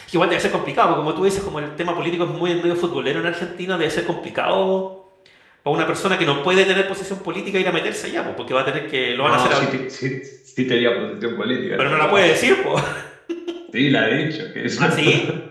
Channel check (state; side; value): identical; both; correlation 1.00